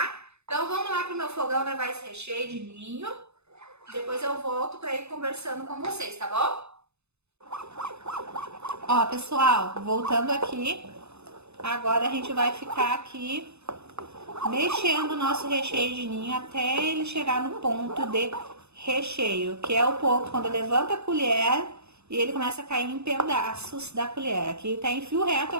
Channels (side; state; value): left; late; 0.81 ms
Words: Então vamos lá pro meu fogão levar esse recheio de ninho. Depois eu volto para ir conversando com vocês, tá bom? Ó, pessoal, voltando aqui. Agora a gente vai ficar aqui mexendo o nosso recheio de ninho até ele chegar no ponto de recheio, que é o ponto quando levanta a colher e ele começa a cair em pedaços da colher. Aqui tá em fio reto, eu